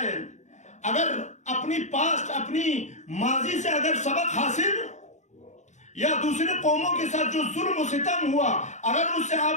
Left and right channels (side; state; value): right; late; 0.34 ms